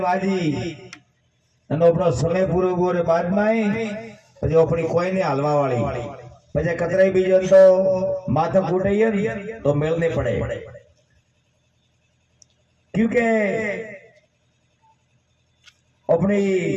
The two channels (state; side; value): identical; both; correlation 1.00